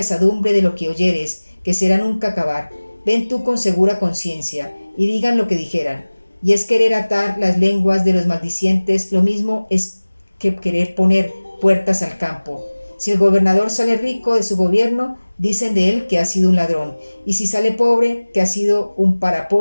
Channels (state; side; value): inverted; both; correlation -1.00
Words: de lo que oyeres, que será nunca acabar. Ven tú con segura conciencia, y digan lo que dijeran. Y es querer atar las lenguas de los maldicientes, lo mismo es que querer poner puertas al campo. Si el gobernador sale rico de su gobierno, dicen de él que ha sido un ladrón, y si sale pobre, que ha sido un